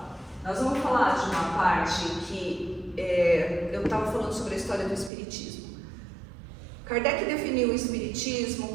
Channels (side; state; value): left; drops out; at 5.1 s